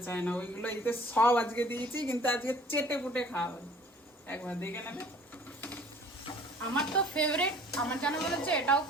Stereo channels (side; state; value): both; normal; correlation 0.52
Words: চায় না। ওইগুলো এতে সব আজকে দিয়েছি, কিন্তু আজকে চেটে পুটে খাওয়া একবার দেখে নেবে। আমার তো ফেভারিট, আমার জানা বলেছে এটাও